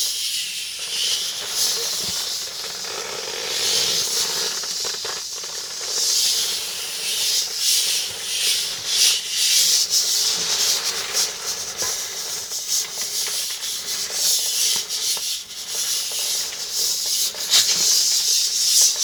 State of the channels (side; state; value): both; identical; correlation 1.00